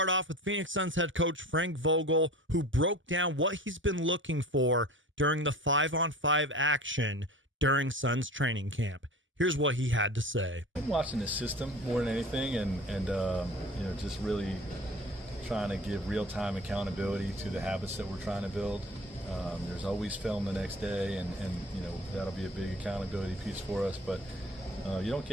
off with Phoenix Suns head coach Frank Vogel, who broke down what he's been looking for during the 5-on-5 action during Suns training camp. Here's what he had to say. I'm watching the system more than anything, and just really trying to give real-time accountability to the habits that we're trying to build. There's always film the next day, and that'll be a big accountability piece for us, but you don't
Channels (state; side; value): normal; both; correlation 0.40